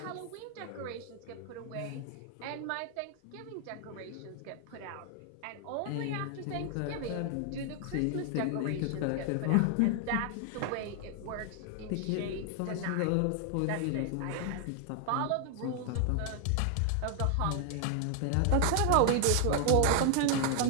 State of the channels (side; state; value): both; different; correlation 0.00